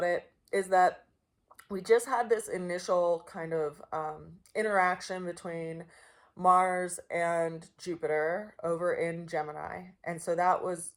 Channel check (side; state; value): both; identical; correlation 1.00